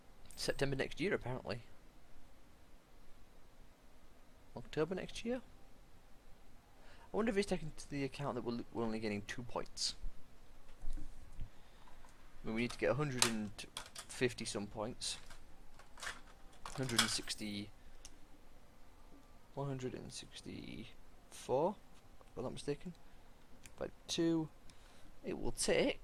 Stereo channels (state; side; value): identical; both; correlation 1.00